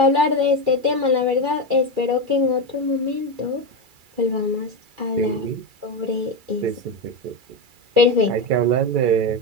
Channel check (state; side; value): late; left; 2.3 ms